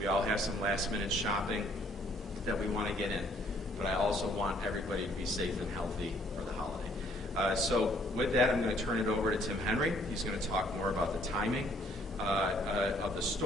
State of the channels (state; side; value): normal; both; correlation 0.64